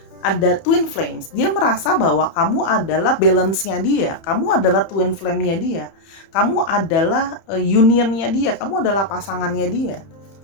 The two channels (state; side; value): late; right; 31 ms